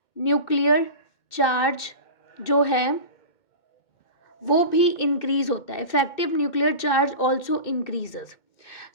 न्यूक्लियर चार्ज जो है वो भी इंक्रीज होता है. Effective nuclear charge also increases.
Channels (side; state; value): right; late; 2.2 ms